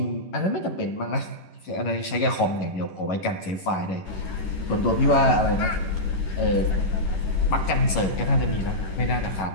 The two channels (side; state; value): right; late; 11 ms